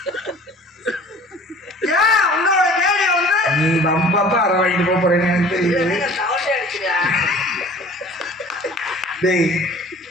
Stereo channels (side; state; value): both; normal; correlation 0.47